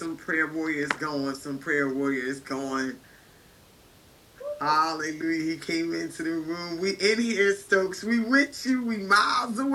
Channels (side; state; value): both; identical; correlation 1.00